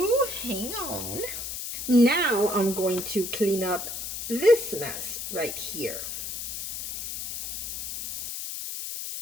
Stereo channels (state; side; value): noise; left; hiss, 6 dB below the sound